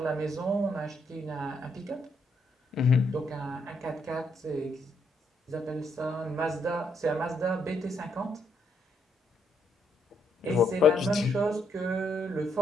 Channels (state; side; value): normal; both; correlation 0.75